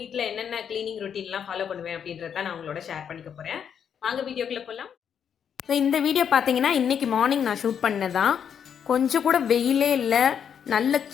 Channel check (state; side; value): quieter; right; 7.9 dB